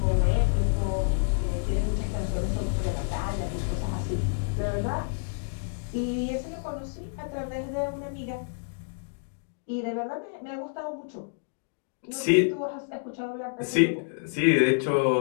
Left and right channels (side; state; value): right; silent; digital silence